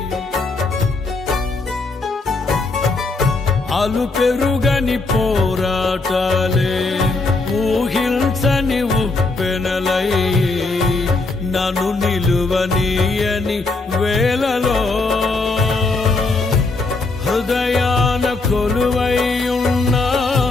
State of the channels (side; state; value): right; quieter; 3.5 dB